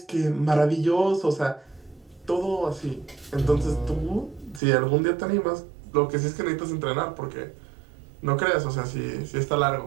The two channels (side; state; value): left; drops out; at 4.6 s